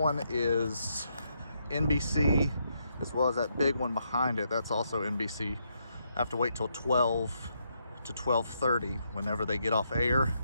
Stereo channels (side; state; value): both; inverted; correlation -0.77